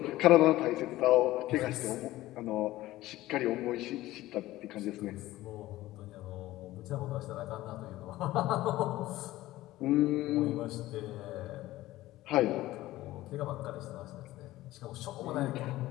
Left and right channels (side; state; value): right; quieter; 16.5 dB